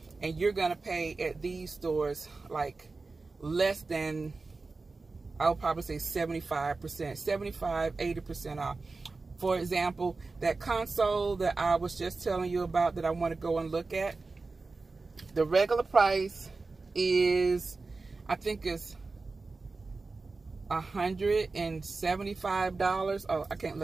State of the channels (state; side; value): quieter; left; 3.8 dB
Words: and you're going to pay at these stores like less than, I'll probably say 75%, 75, 80% off. For example, that console that I was just telling you about that I want to go and look at, the regular price is, I think it's $175. Oh, I can't